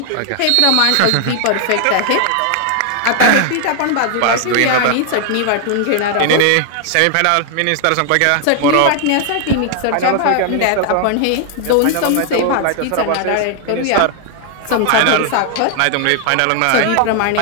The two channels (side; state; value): both; different; correlation 0.00